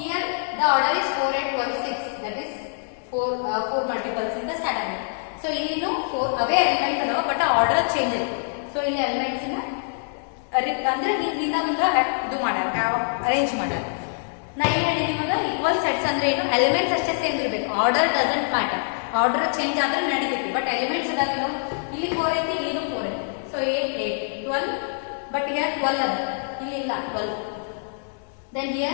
the order is 4, 8, 12, 6. That is 4 multiples in the standard. So ಇಲ್ಲಿ 4 away elements ಅದಾವ but order change ಆಯ್ತು. So ಇಲ್ಲಿ elements ಅಂದ್ರೆ ಹಿಂದಿಂದ ಮುಂದೆ ಇದು ಮಾಡ್ಯಾರ arrange ಮಾಡ್ಯಾರ. ನಾ ಏನು ಹೇಳಿದೆ ನಿಮಗೆ ಈಕ್ವಲ್ ಸೆಟ್ಸ್ ಅಂದ್ರೆ ಏನು ಎಲಿಮೆಂಟ್ಸ್ ಅಷ್ಟೇ ಸೇಮ್ ಇರಬೇಕು. Order doesn't matter. Order change ಆದ್ರೆ ನಡೀತೈತಿ ಬಟ್ ಎಲಿಮೆಂಟ್ಸ್ ಅದಾಗಿಲ್ಲ. ಇಲ್ಲಿ 4 ಐತಿ ಇಲ್ಲಿನೂ 4 ಐತಿ. ಸೊ 8, 8, 12 ಬಟ್ ಹಿಯರ್ 12 ಅದ ಇಲ್ಲಿ ಇಲ್ಲ 12. ದೆನ್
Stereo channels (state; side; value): silent; right; digital silence